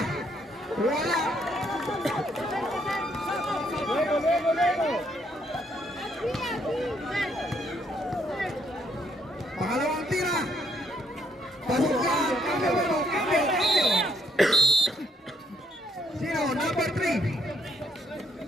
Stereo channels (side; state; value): both; normal; correlation 0.71